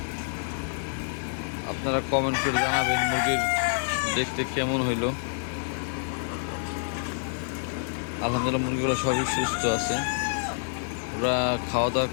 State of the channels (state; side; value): silent; right; 60 dB below the other